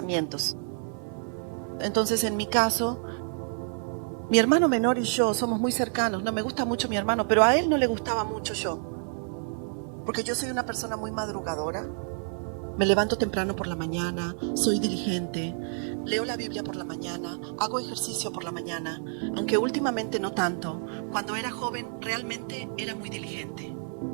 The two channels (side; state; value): left; silent; 59 dB below the other